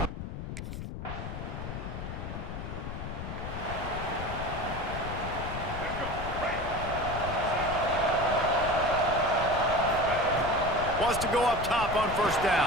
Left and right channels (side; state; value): left; noise; rumble, 7 dB below the sound